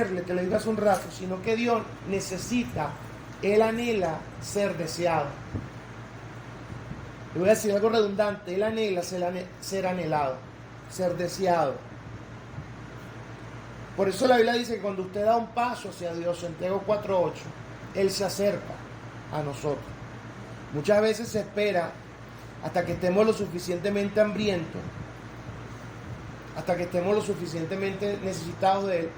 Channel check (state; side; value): identical; both; correlation 1.00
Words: te lo digo hace un rato, sino que Dios necesita, Él anhela ser deseado. Le voy a decir algo redundante, Él anhela ser anhelado, ser deseado. Por eso la Biblia dice que cuando usted da un paso hacia Dios, Santiago 4:8, Él se acerca a nosotros. Muchas veces se espera hasta que estemos lo suficientemente hambrientos, hasta que estemos lo suficientemente necesitados de Él